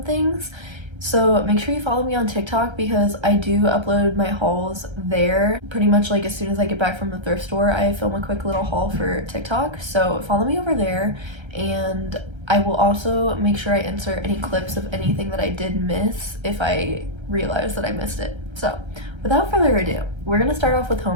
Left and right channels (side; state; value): left; late; 1.3 ms